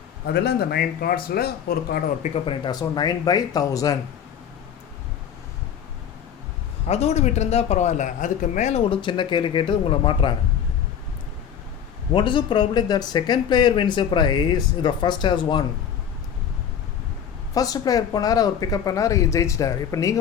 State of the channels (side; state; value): right; quieter; 8.5 dB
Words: அதில் அந்த 9 கார்ட்ஸில் ஒரு கார்டை ஒரு பிக்கப் பண்ணிட்டா. So 9 by 1000. அதோடு விட்டுருந்தா பரவாயில்ல, அதுக்கு மேலே ஒரு சின்ன கேள்வி கேட்டு உங்களை மாட்டுறாங்க. What is the probability that second player wins a prize if the first has won? First player போனார், அவர் பிக்கப் பண்ணார், ஜெயிச்சிட்டார். இப்போ